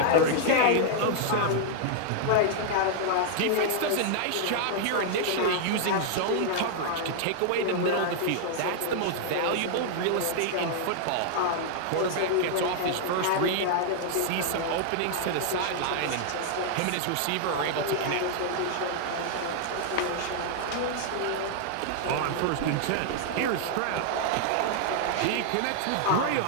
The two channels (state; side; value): different; both; correlation -0.01